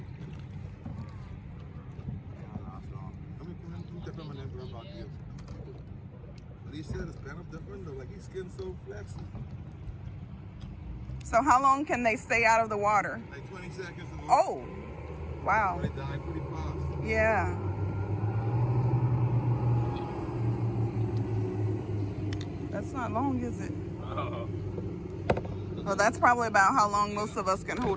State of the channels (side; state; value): both; identical; correlation 1.00